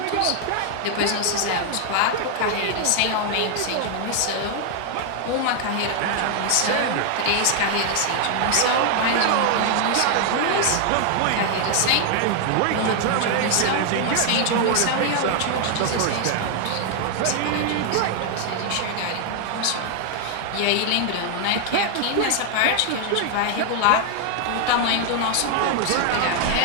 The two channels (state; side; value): different; both; correlation 0.00